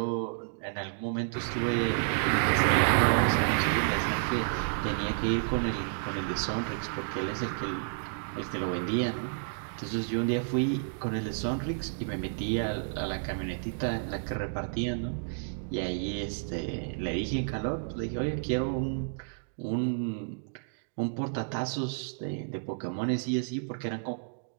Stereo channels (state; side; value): silent; left; digital silence